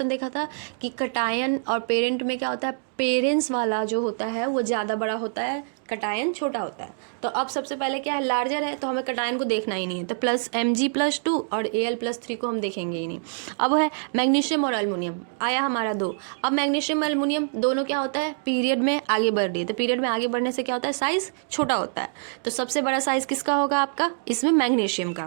देखा था कि कटायन और पेरेंट में क्या होता है, पेरेंट्स वाला जो होता है वो ज़्यादा बड़ा होता है, कटायन छोटा होता है। तो अब सबसे पहले क्या है, लार्जर है तो हमें कटायन को देखना ही नहीं है, तो Mg+2 और Al+3 को हम देखेंगे ही नहीं। अब है मैग्नीशियम और एल्युमिनियम, आया हमारा 2। अब मैग्नीशियम एल्युमिनियम दोनों क्या होता है, पीरियड में आगे बढ़ रही है, तो पीरियड में आगे बढ़ने से क्या होता है, साइज छोटा होता है। तो सबसे बड़ा साइज किसका होगा आपका, इसमें मैग्नीशियम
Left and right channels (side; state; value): left; silent; digital silence